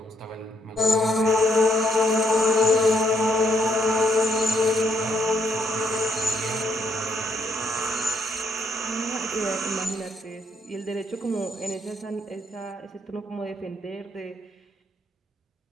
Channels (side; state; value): both; normal; correlation 0.74